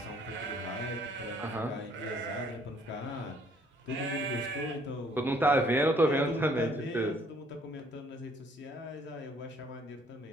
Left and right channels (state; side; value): normal; both; correlation 0.63